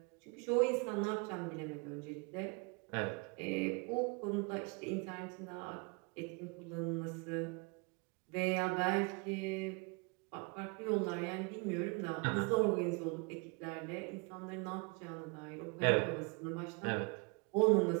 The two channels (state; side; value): quieter; left; 31.8 dB